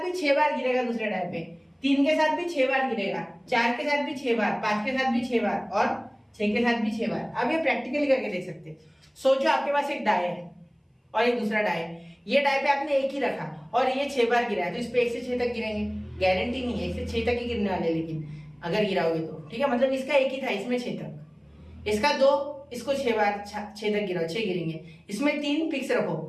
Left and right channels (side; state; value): both; identical; correlation 1.00